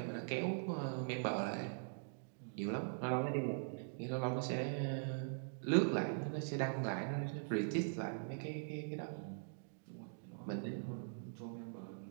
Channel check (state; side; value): silent; left; digital silence